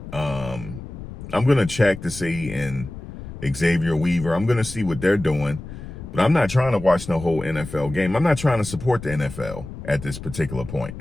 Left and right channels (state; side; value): noise; left; rumble, 11 dB below the sound